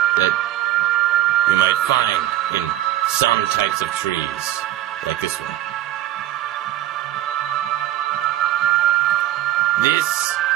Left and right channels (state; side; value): quieter; left; 13.7 dB